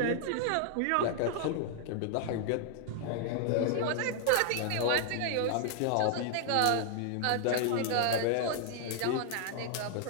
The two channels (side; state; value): both; different; correlation -0.01